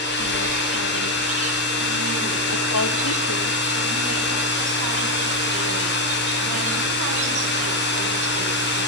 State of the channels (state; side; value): normal; both; correlation 0.06